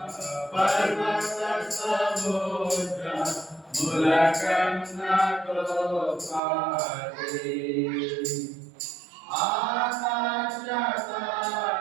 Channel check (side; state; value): left; drops out; at 6.4 s